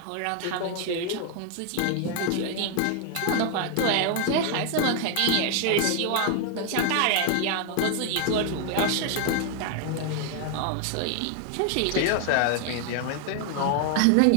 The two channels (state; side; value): different; both; correlation 0.00